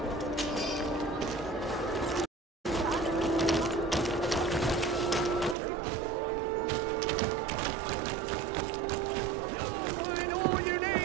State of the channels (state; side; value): drops out; left; at 5.6 s